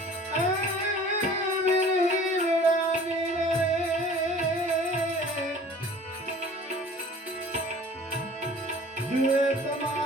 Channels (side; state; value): both; normal; correlation 0.47